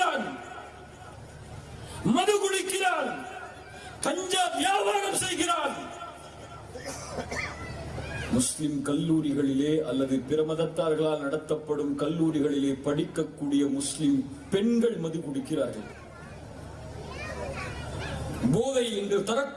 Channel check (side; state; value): both; identical; correlation 1.00